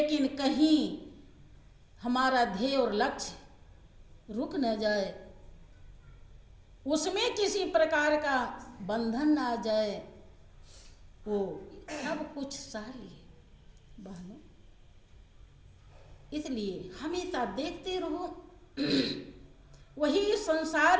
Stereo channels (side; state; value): both; identical; correlation 1.00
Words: कहीं हमारा ध्येय और लक्ष्य रुक न जाए, उसमें किसी प्रकार का बंधन ना आ जाए, वो सब कुछ सह लिए बहनों। इसलिए हमेशा देखते रहो, वही